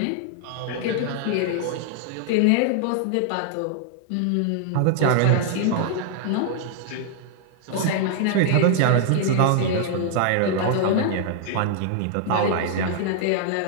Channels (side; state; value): both; different; correlation -0.01